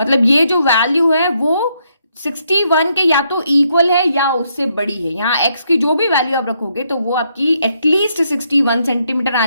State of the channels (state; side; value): inverted; both; correlation -0.76